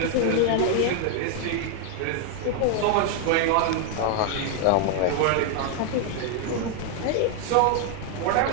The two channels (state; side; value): different; both; correlation 0.00